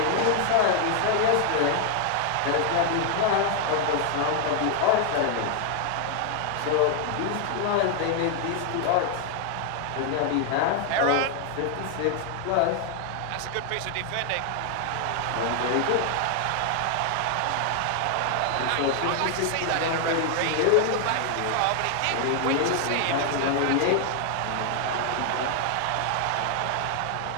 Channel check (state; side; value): different; both; correlation 0.00